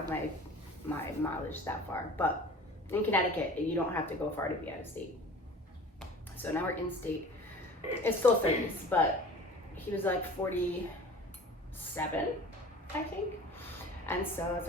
my mileage that far. But in Connecticut, you don't have to go far to be out of state. So now we're in state. It's still 30s, but he was like 47, I think. And so I was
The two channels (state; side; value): normal; both; correlation 0.42